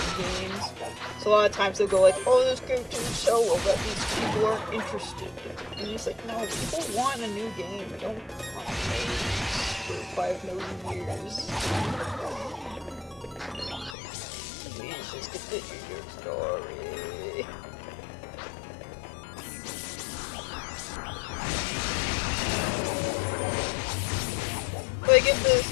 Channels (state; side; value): drops out; right; at 14.0 s